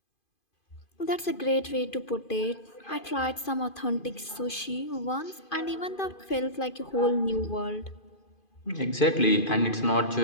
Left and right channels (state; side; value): late; right; 2.5 ms